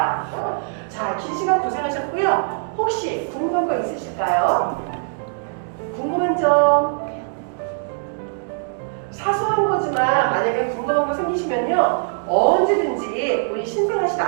자, 긴 시간 고생하셨고요. 혹시 궁금한 거 있으실까요? 궁금한 점, 사소한 거지만 만약에 궁금한 거 생기시면요 언제든지 우리 신생아실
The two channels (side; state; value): left; silent; digital silence